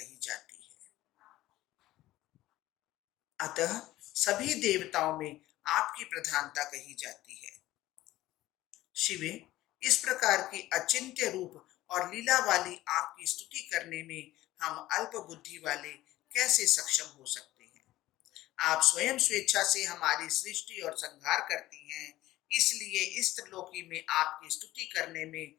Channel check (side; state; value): right; quieter; 16.1 dB